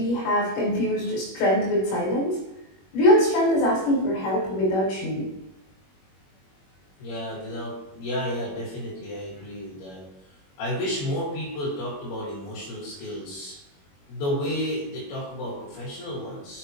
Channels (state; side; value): late; right; 21 ms